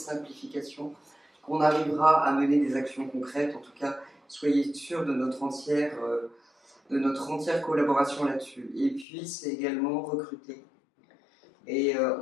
qu'on arrivera à mener des actions concrètes. En tout cas, soyez sûrs de notre entière collaboration là-dessus. Et puis, c'est également recruter. Et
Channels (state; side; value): drops out; right; at 9.1 s